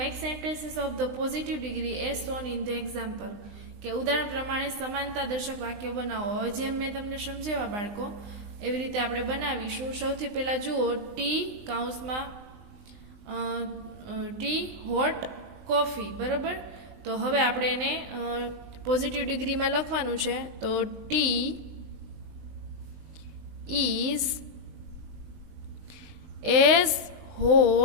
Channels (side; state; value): left; late; 20 ms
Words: sentences of the positive degree as shown in the example, કે ઉદાહરણ પ્રમાણે સમાનતા દર્શક વાક્યો બનાવો. હવે જેમ મેં તમને સમજાવ્યા બાળકો એવી રીતે આપણે બનાવીશું. સૌથી પહેલાં જુઓ, ટી કાઉન્સમાં ટી હોટ કોફી બરાબર. તો હવે આપણે એને પોઝિટિવ ડિગ્રીમાં લખવાનું છે, તો T is as